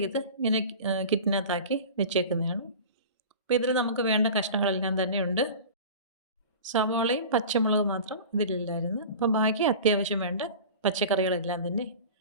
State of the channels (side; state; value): both; inverted; correlation -0.36